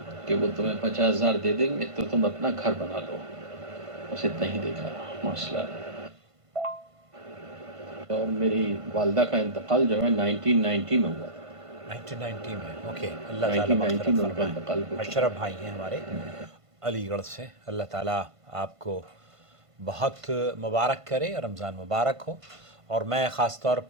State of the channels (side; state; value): left; late; 1.5 ms